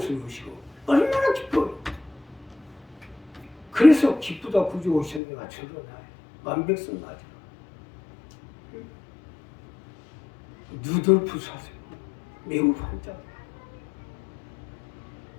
오시고 얼마나 기뻐요. 그래서 기쁘다 구주 오셨는데 맞춰도 나요. 만백성 맞아. 누덜프 사슴 매우 반짝.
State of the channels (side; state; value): right; drops out; at 5.2 s